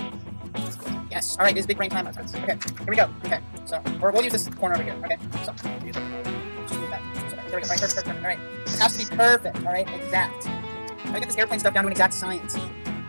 Yes. Alright, this is big brain time. Okay, here we go. Okay, so, or we'll use this corner over here. Okay, so, just move that. There we go. Alright, perfect. Alright, this has to be perfect. Alright, exact. I get this airplane stuff down to an exact science.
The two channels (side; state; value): both; inverted; correlation -1.00